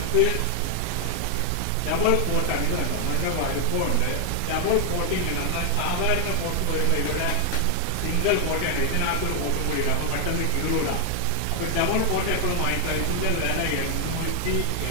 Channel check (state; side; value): different; both; correlation 0.00